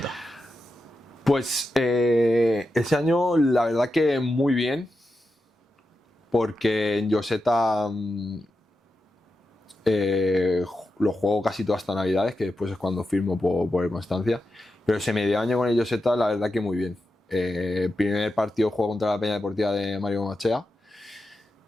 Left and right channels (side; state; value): both; normal; correlation 0.89